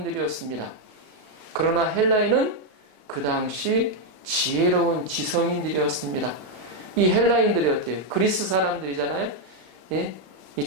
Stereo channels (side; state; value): left; late; 32 ms